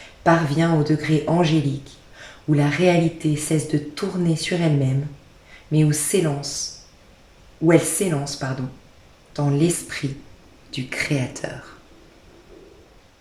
parvient au degré angélique, où la réalité cesse de tourner sur elle-même, mais où elle s'élance, dans l'esprit du Créateur.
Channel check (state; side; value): identical; both; correlation 1.00